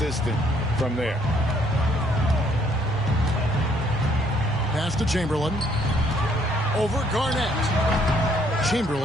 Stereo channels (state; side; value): normal; both; correlation 0.66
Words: from there. Pass to Chamberlain. Over Garnett.